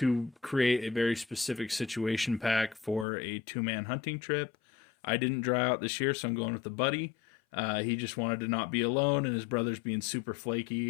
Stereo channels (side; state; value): right; drops out; at 3.1 s